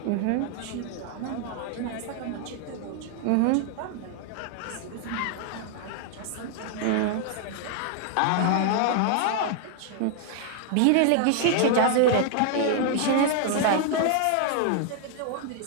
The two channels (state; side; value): different; both; correlation 0.00